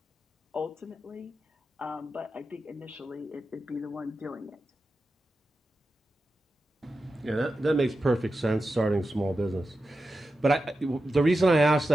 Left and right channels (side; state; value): both; normal; correlation 0.91